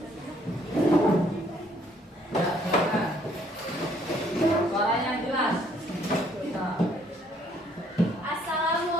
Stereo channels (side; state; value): both; normal; correlation 0.65